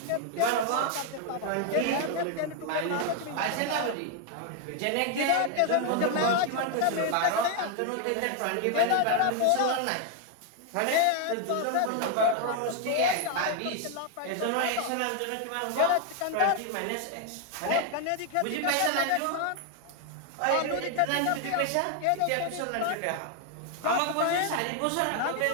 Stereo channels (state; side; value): different; both; correlation 0.00